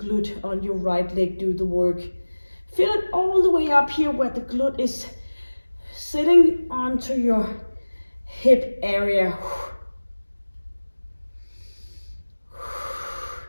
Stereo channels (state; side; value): inverted; both; correlation -1.00